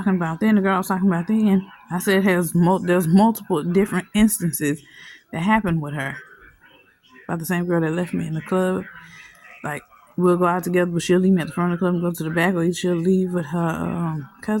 about then, the girl I was talking about then, I said there's multiple different instances that happened with her. About the same girl that left me in the club. Like, we'll go out together, but she'll leave me at the front of the club and go to the back, or she'll leave with her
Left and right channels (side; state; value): both; identical; correlation 1.00